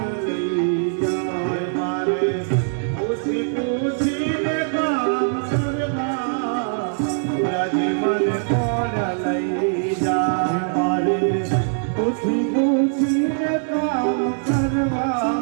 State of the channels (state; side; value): silent; left; digital silence